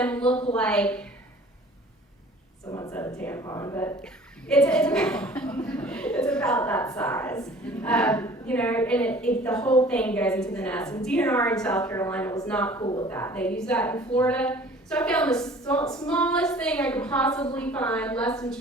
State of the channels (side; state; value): both; normal; correlation 0.49